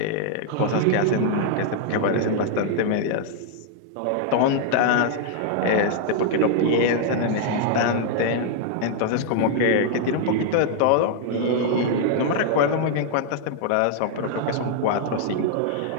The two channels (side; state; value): both; different; correlation -0.01